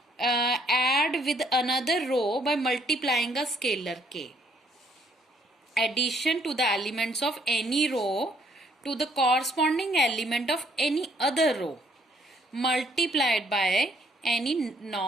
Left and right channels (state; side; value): normal; both; correlation 0.66